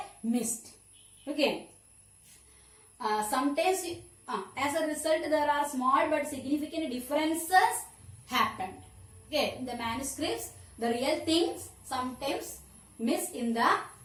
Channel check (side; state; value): both; identical; correlation 1.00